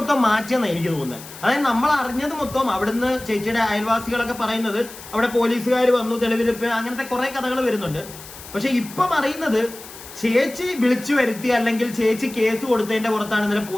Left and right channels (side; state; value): left; noise; hiss, 16 dB below the sound